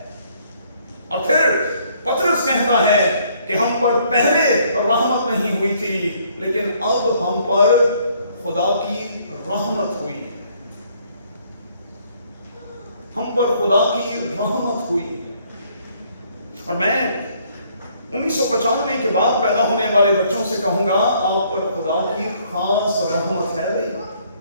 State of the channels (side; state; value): both; inverted; correlation -0.65